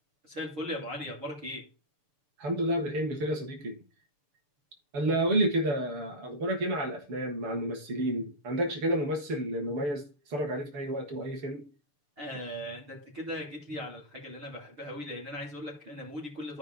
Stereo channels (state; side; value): late; left; 6.9 ms